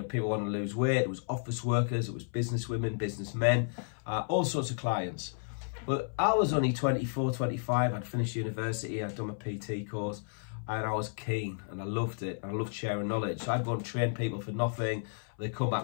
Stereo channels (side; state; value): right; silent; 56 dB below the other